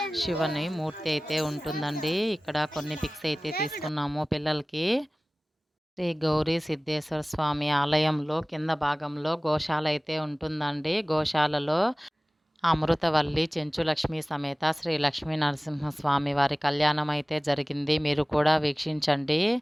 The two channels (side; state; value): both; normal; correlation 0.98